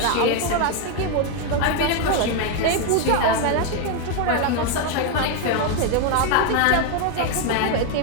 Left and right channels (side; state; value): both; different; correlation 0.01